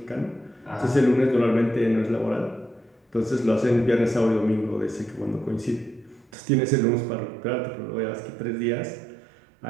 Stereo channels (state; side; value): drops out; left; at 6.3 s